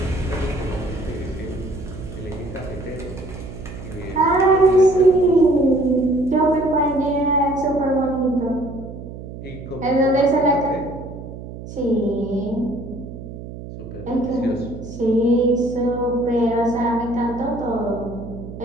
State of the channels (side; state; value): right; noise; hum, 12 dB below the sound